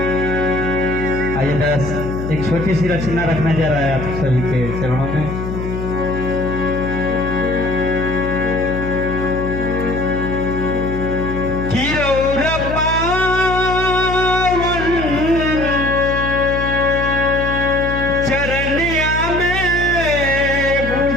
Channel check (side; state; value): left; noise; hum, 5 dB below the sound